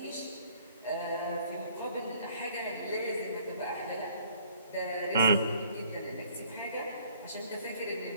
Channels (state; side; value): inverted; both; correlation -0.58